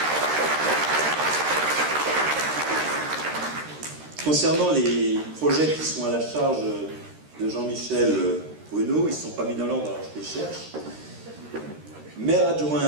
Concernant les projets qui sont à la charge de Jean-Michel Bruno, ils ne sont pas mis dans l'ordre, alors je les cherche. Maire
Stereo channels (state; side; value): late; left; 13 ms